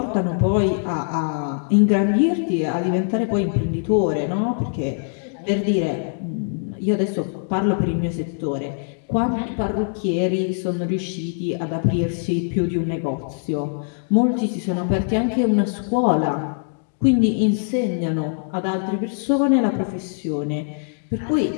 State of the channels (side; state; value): right; silent; digital silence